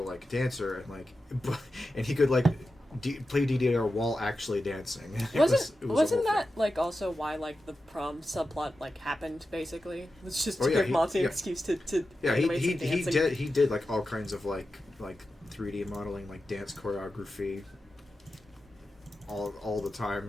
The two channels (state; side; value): normal; both; correlation 0.91